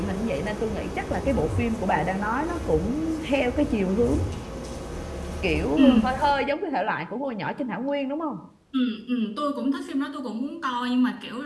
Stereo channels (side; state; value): both; identical; correlation 1.00